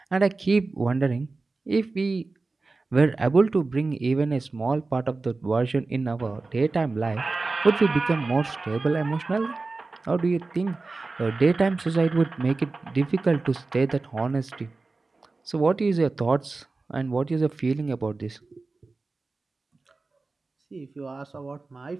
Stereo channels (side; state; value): left; quieter; 3.7 dB